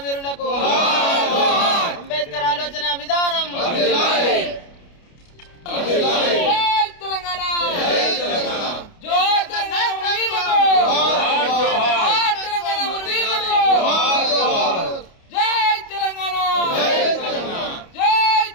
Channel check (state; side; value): late; right; 29 ms